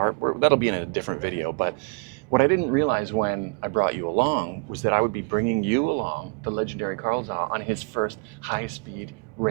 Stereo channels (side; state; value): left; quieter; 34.7 dB